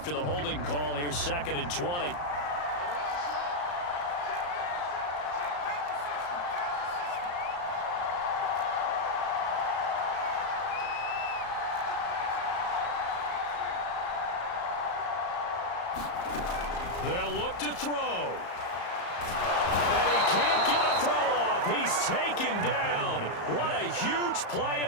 the holding call, here's 2nd and 20. They'll look to throw. And he can't get a throw off. He's taken down. What a huge play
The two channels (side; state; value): right; late; 34 ms